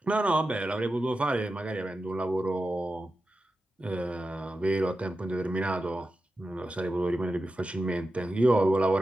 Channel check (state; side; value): normal; both; correlation 0.92